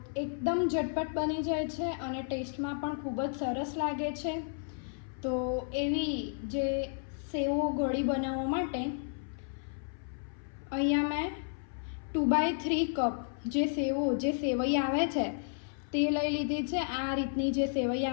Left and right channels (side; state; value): right; silent; 56 dB below the other